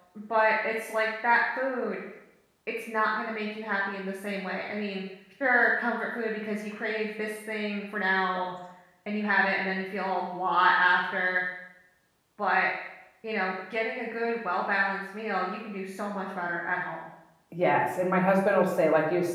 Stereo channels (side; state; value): both; identical; correlation 1.00